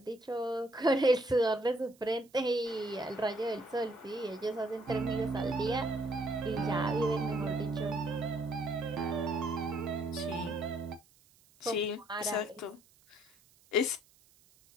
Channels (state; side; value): noise; right; hiss, 30 dB below the sound